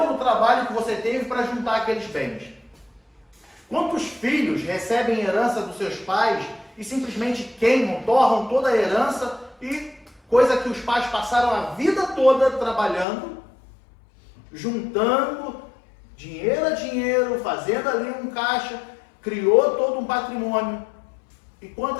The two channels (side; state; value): right; drops out; at 13.1 s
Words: e o trabalho que você teve para juntar aqueles bens. Quantos filhos recebem herança dos seus pais e simplesmente queimam, torram toda a herança, e coisa que os pais passaram a vida toda trabalhando, juntando dinheiro a dinheiro, fazendo ali um caixa, criou todo um patrimônio. E